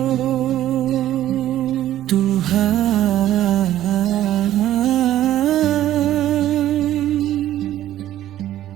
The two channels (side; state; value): left; quieter; 12.9 dB